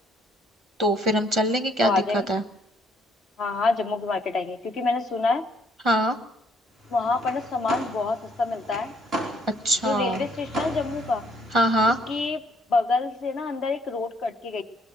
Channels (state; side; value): normal; both; correlation 0.67